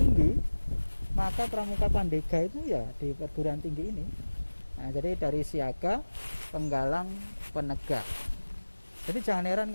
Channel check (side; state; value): both; inverted; correlation -1.00